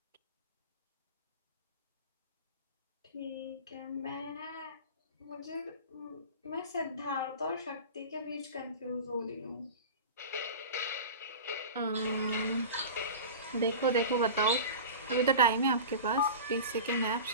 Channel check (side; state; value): both; inverted; correlation -0.32